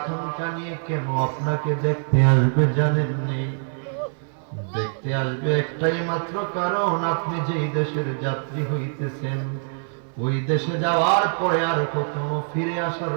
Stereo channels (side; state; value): left; silent; 63 dB below the other